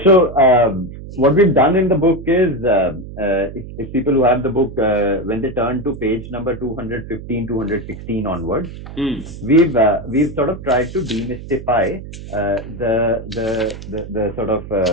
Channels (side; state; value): right; noise; hum, 13 dB below the sound